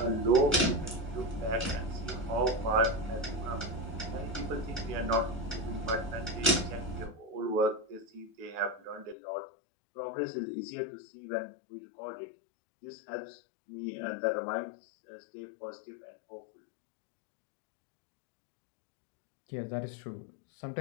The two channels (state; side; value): drops out; right; at 9.2 s